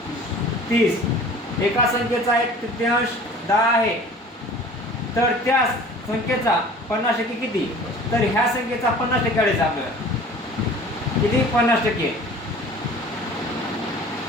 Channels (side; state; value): both; normal; correlation 0.45